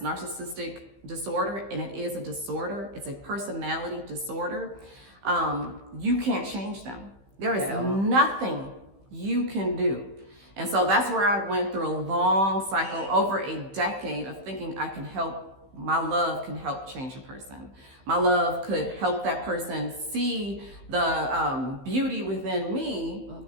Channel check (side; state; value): left; late; 15 ms